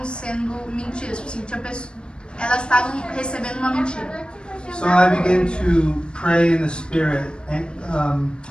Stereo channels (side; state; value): right; late; 0.054 ms